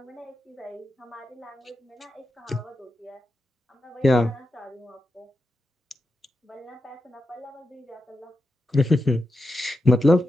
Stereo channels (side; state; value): both; normal; correlation 0.88